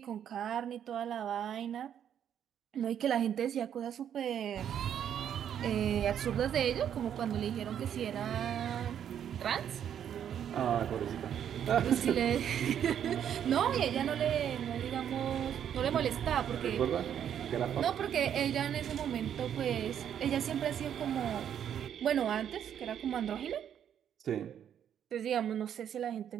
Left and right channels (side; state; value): left; quieter; 9.3 dB